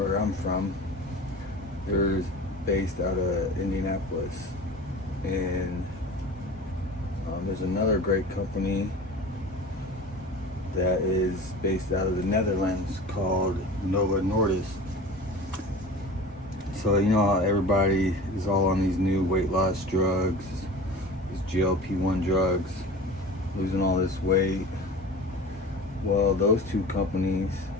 I'm from. They're based out of Indianapolis. And there's another great company that is based out of the Netherlands called Novo Nordisk. So you know how everybody is all on these new weight loss drugs, these GLP-1 drugs, losing all this weight. Well, those two companies,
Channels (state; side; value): normal; both; correlation 0.38